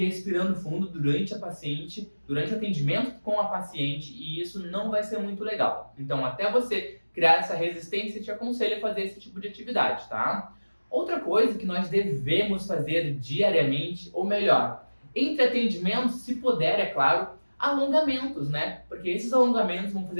expirando fundo durante o atendimento com a paciente, e isso não vai ser muito legal. Então, até você criar essa resistência, eu te aconselho a fazer esse tipo de atividade, tá? Outra coisa que nós devemos fazer diariamente, ou melhor, entre atendimentos, se puder, é claro, alongamentos, né? Porque esses alongamentos vão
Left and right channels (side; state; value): both; inverted; correlation -1.00